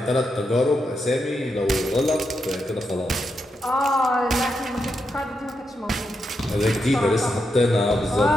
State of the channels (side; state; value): both; normal; correlation 0.84